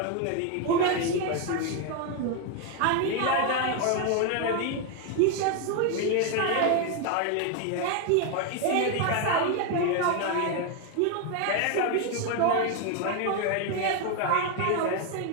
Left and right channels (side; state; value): both; different; correlation 0.01